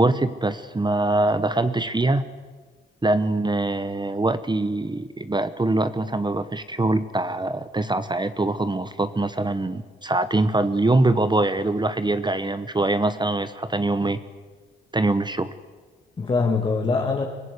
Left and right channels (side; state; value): both; normal; correlation 0.75